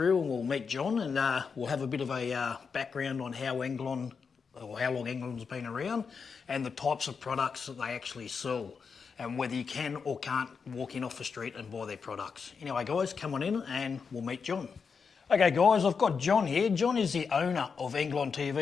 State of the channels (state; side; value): quieter; right; 5.7 dB